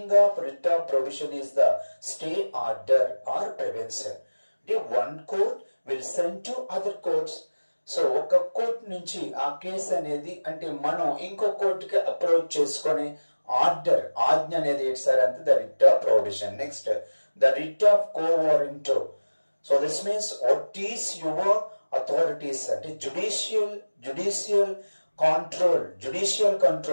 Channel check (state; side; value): inverted; both; correlation -1.00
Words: of writ of prohibition is the stay order or prevention. The one court will send to other courts. So ఒక court నుంచి ఆ case అనేది అంటే మనం ఇంకో కోర్టుకి approach చేసుకొని order ఆజ్ఞ అనేది ఏంటి సార్ అంటే the writ of prohibition. Next the writ of co వారెంటో. So this means what is your authorities అంటే జుడిషియల్